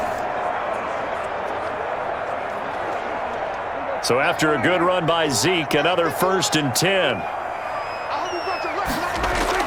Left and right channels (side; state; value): both; identical; correlation 1.00